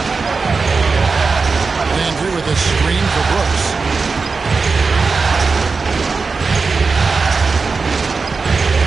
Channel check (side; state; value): left; quieter; 4.5 dB